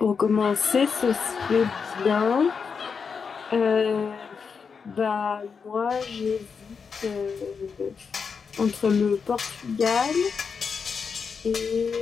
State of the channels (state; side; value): quieter; right; 5.8 dB